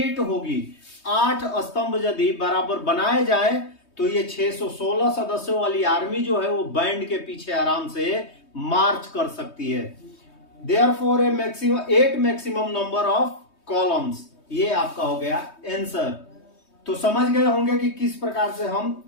होगी। 8 स्तंभ यदि बराबर बनाए जाए तो ये 616 सदस्यों वाली आर्मी जो है वो बैंड के पीछे आराम से मार्च कर सकती है। Therefore A maximum 8 maximum number of columns, ये आपका हो गया आंसर। तो समझ गए होंगे कि किस प्रकार से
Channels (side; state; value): right; late; 3.2 ms